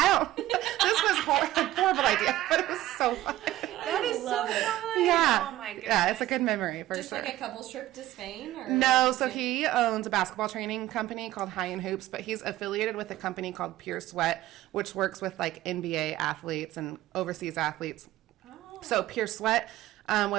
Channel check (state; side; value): quieter; left; 15.1 dB